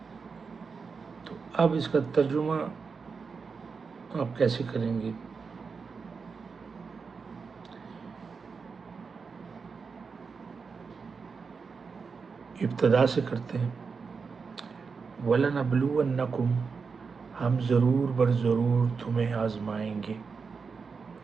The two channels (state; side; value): quieter; left; 5.2 dB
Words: تو اب اس کا ترجمہ آپ کیسے کریں گے؟ ابتدا سے کرتے ہیں، وَلَنَبْلُوَنَّكُمْ، ہم ضرور بر ضرور تمہیں آزمائیں گے،